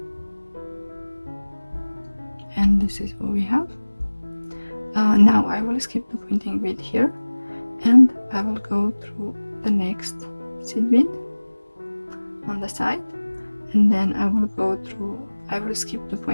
and this is what we have. Now I will skip the pointing bead here, and I will go through the next seed bead on the side, and then I will go through I will skip the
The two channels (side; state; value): both; inverted; correlation -1.00